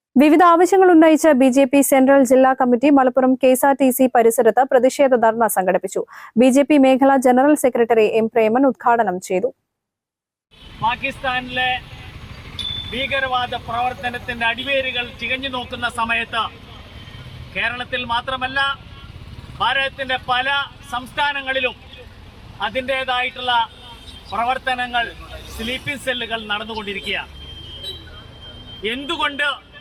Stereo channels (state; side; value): identical; both; correlation 1.00